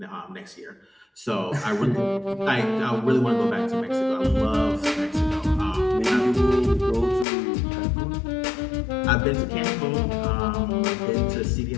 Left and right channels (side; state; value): right; drops out; at 7.2 s